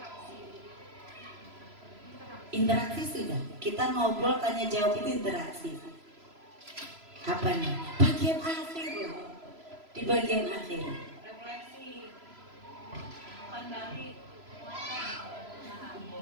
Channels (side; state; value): left; late; 3.0 ms